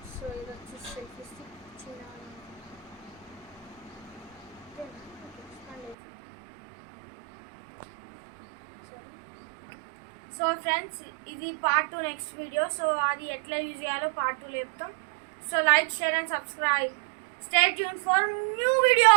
సో ఇది వచ్చి సెల్ఫీ స్టిక్ చిన్న. సో ఫ్రెండ్స్, ఇది పార్ట్ 2 నెక్స్ట్ వీడియో. సో అది ఎట్లా యూజ్ చేయాలో పార్ట్ 2 చెప్తాం. So like, share and subscribe. Stay tune for new video.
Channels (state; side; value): drops out; left; at 6.0 s